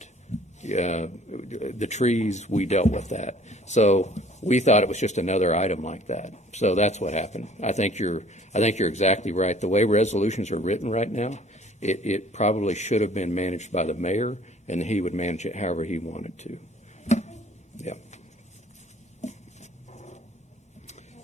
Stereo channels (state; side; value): normal; both; correlation 0.54